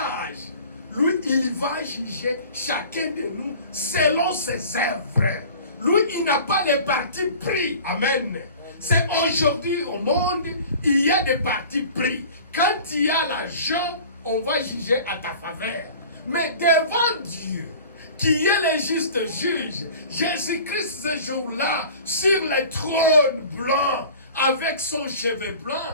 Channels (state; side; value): inverted; both; correlation -0.43